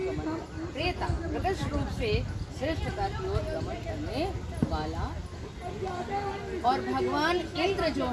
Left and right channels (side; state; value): both; identical; correlation 1.00